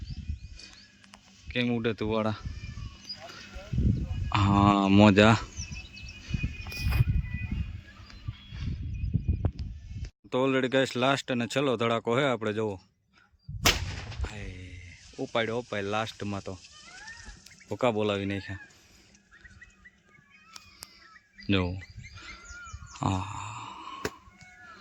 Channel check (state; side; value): identical; both; correlation 1.00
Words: કેમ ઉડે તું વાળા. મોજા. તો ઓલરેડી ગાઈસ લાસ્ટ અને છેલ્લો ધડાકો છે આપણે. જુઓ ઉપાડ્યો અપાય લાસ્ટમાં. તો ભૂકા બોલાવી નાખ્યા. જો